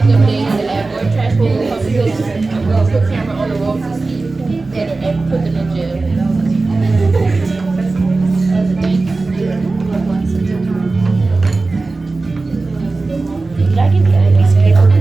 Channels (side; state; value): left; quieter; 3.5 dB